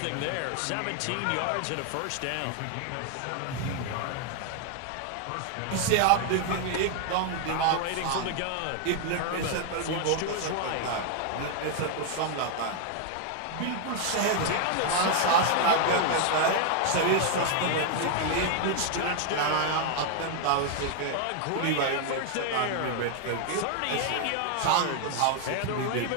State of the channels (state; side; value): different; both; correlation 0.00